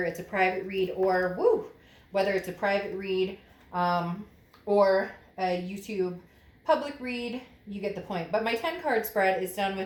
it's a private read or, or a YouTube public read. You get the point. But my 10 card spread is done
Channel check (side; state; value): both; identical; correlation 1.00